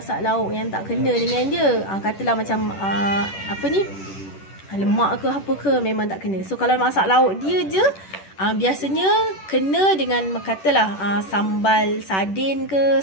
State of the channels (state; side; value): late; right; 10 ms